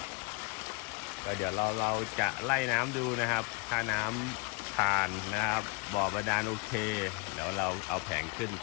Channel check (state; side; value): quieter; right; 28.6 dB